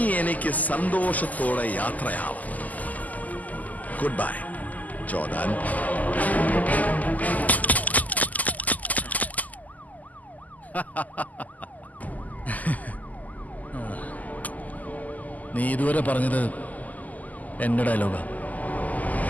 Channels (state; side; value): late; right; 0.079 ms